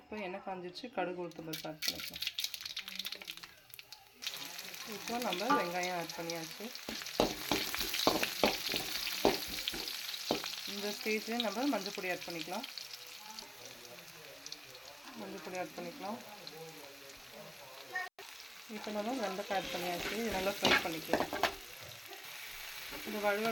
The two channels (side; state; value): both; identical; correlation 1.00